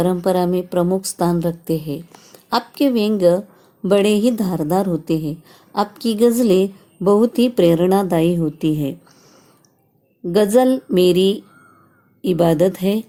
में प्रमुख स्थान रखते हैं। आपके व्यंग्य बड़े ही धारदार होते हैं। आपकी गज़लें बहुत ही प्रेरणादायी होती है। गज़ल मेरी इबादत है,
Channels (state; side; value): identical; both; correlation 1.00